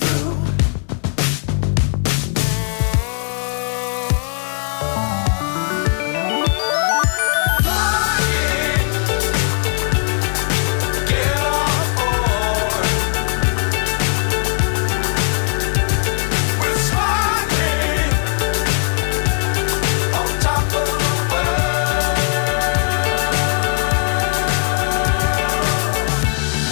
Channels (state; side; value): silent; right; 57 dB below the other